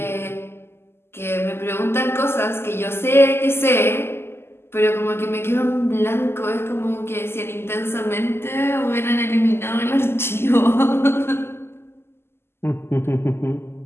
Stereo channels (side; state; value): right; late; 0.12 ms